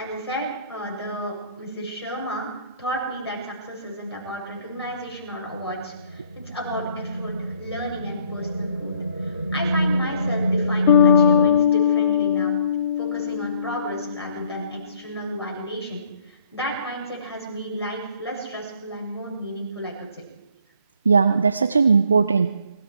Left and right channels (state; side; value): inverted; both; correlation -0.62